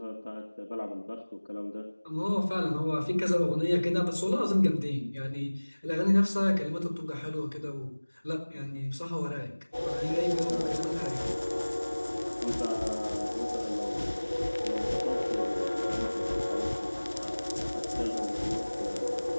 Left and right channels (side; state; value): both; inverted; correlation -1.00